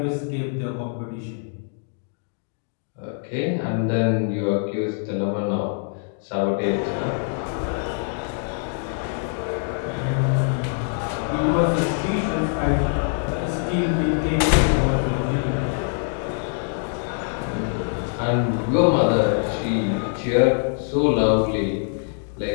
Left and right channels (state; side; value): silent; right; 60 dB below the other